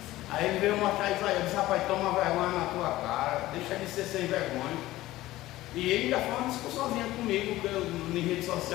Aí ele veio mostrar Isaías. Eu disse, rapaz, toma vergonha na tua cara. Deixa de ser sem vergonha. E ele ainda foi uma discussãozinha comigo em rede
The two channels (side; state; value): right; quieter; 16.5 dB